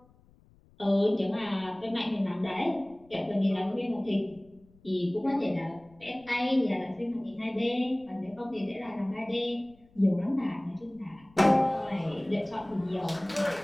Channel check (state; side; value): noise; left; rumble, 29 dB below the sound